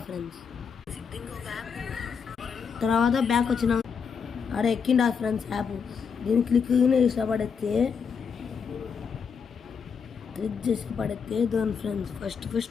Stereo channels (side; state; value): right; quieter; 6.3 dB